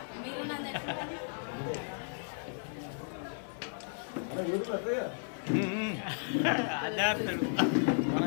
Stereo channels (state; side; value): silent; right; digital silence